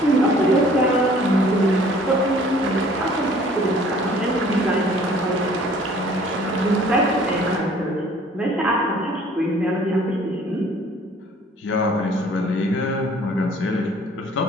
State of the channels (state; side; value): normal; both; correlation 0.54